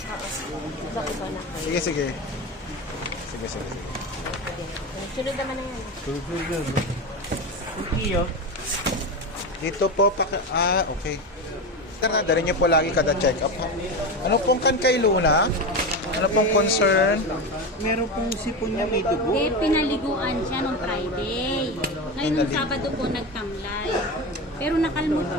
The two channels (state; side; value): normal; both; correlation 0.20